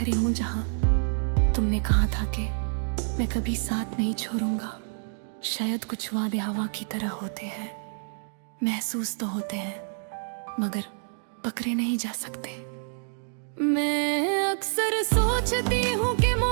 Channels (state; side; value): silent; left; digital silence